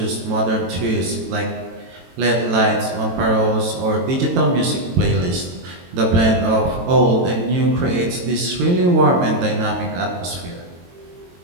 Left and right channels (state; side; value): late; left; 22 ms